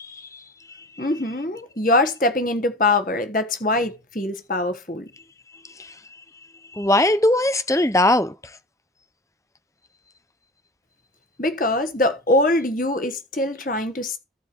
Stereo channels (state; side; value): normal; both; correlation 0.35